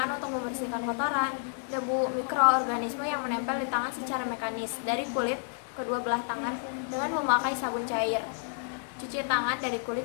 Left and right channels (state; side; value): silent; right; 58 dB below the other